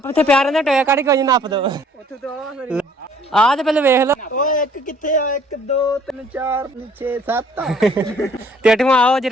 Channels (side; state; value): both; normal; correlation 0.59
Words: ਇੱਥੇ ਪਿਆ ਰਹਿੰਦਾ ਟੋਇਆ ਕੱਢ ਕੇ ਨੱਪ ਦੋ ਆ ਤੇ ਪਹਿਲੇ ਵੇਖ ਲਓ ਓਏ ਇੱਕ ਕਿੱਥੇ ਆ 1 2 3 4 6 7 ਤੇ ਅਠਵਾਂ ਆਓ